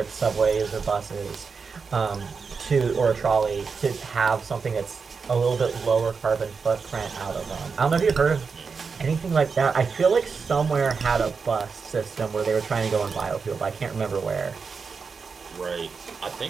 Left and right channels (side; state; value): left; quieter; 5.2 dB